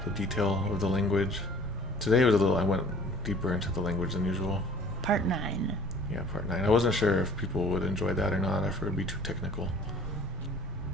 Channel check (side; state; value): both; normal; correlation 0.51